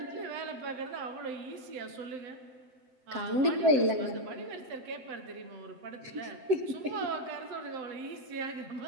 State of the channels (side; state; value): left; late; 7.8 ms